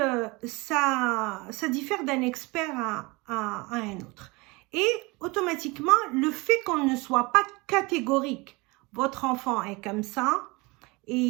ça diffère d'un expert à un autre. Et automatiquement, le fait qu'on ne soit pas catégorique, votre enfant est comme ça,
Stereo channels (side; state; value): left; quieter; 25.2 dB